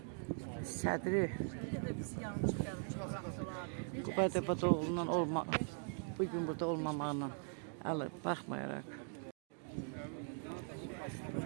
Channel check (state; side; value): silent; left; 50 dB below the other